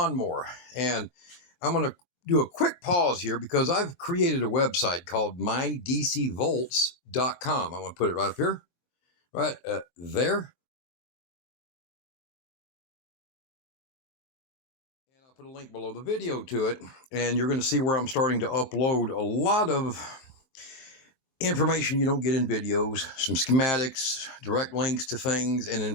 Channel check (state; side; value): late; right; 24 ms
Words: And I'm going to do a quick pause here because I've created a website called mydcvolts.com. I'm going to put it right up here, right there. And I'll put a link below the video to it. And you're going to see where I'm starting to upload a lot of information you don't get in videos, some schematics, direct links to things, and